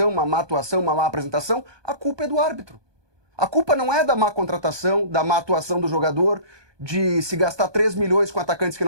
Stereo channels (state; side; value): late; left; 1.2 ms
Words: uma má atuação, uma má apresentação, a culpa é do árbitro. A culpa não é da má contratação, da má atuação do jogador, de se gastar 3 milhões com atacantes que